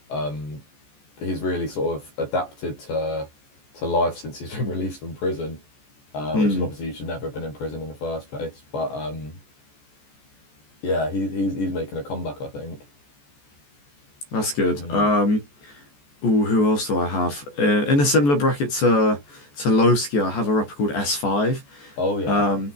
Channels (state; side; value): late; right; 14 ms